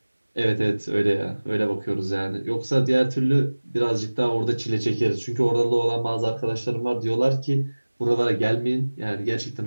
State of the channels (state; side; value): inverted; both; correlation -1.00